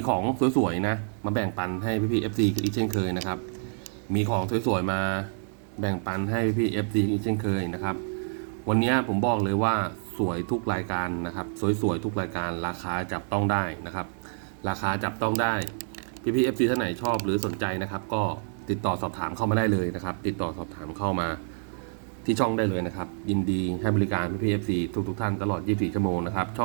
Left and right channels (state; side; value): silent; left; digital silence